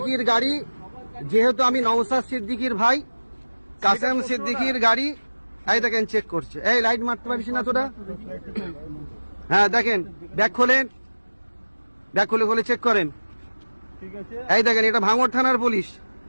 গাড়ি, যেহেতু আমি নওশাদ সিদ্দিকীর ভাই, কাসেম সিদ্দিকীর গাড়ি এই দেখেন চেক করছে। এই লাইট মারতে পারিস না তোরা? হ্যাঁ দেখেন, ব্যাগ খোলেন, ব্যাগ খুলে চেক করেন। এই দেখেন এটা ভাঙড় থানার পুলিশ।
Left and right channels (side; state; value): both; inverted; correlation -1.00